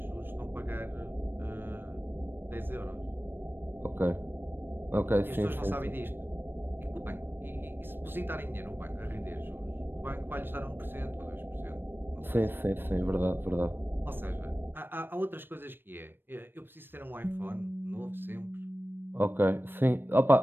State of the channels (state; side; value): late; left; 0.098 ms